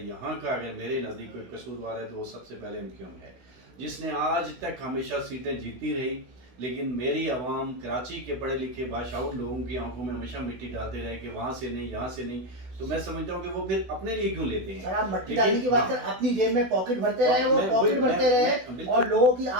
یہاں کا اگر میرے نزدیک کوئی قصوروار ہے تو وہ سب سے پہلے MQM ہے، جس نے آج تک ہمیشہ سیٹیں جیتی رہی، لیکن میری عوام کراچی کے پڑھے لکھے باشعور لوگوں کی آنکھوں میں ہمیشہ مٹی ڈالتے رہے کہ وہاں سے نہیں، یہاں سے نہیں. تو میں سمجھتا ہوں کہ وہ پھر اپنے لیے کیوں لیتے ہیں. سر آپ مٹی ڈالنے کی بات کریں، اپنی جیب میں پاکٹ بھرتے رہے، وہ پاکٹ بھرتے رہے اور لوگوں کی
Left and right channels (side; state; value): left; late; 16 ms